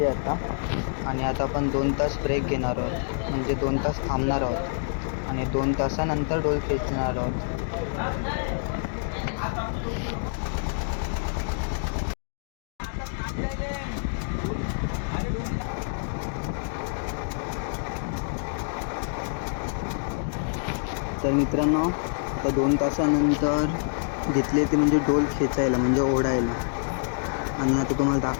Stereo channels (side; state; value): right; silent; digital silence